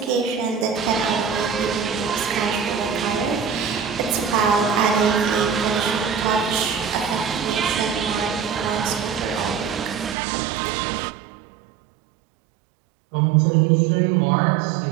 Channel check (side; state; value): left; drops out; at 10.2 s